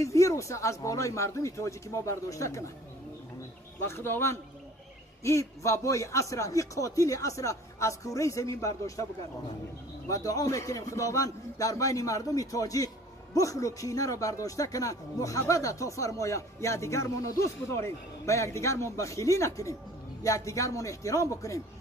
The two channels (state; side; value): normal; both; correlation 0.50